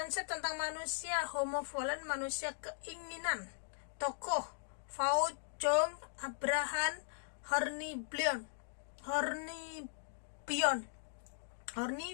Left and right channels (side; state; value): right; silent; digital silence